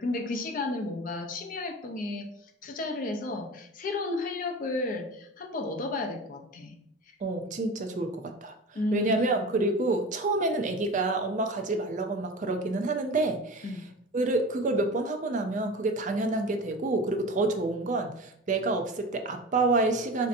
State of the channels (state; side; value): normal; both; correlation 0.33